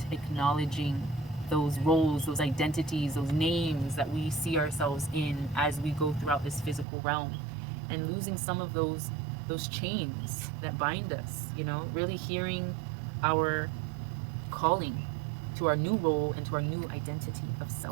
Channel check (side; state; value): left; drops out; at 6.9 s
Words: acknowledging those roles, those identities, those names that we see ourselves in as we go throughout this physical realm, and losing some of those chains that bind us, you know, really hearing our calling to our new role and to our new identity of